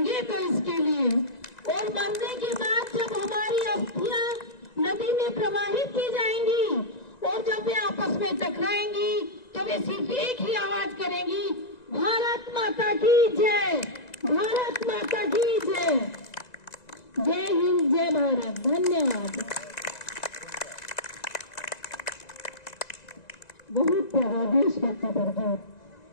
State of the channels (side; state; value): right; late; 1.9 ms